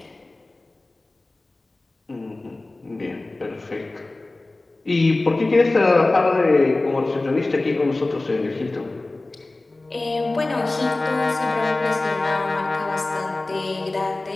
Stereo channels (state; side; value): quieter; right; 3.0 dB